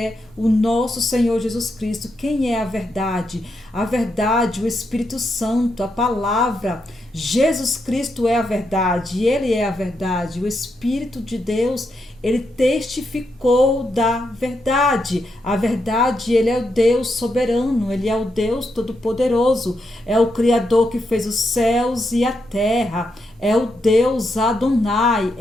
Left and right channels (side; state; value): both; normal; correlation 0.82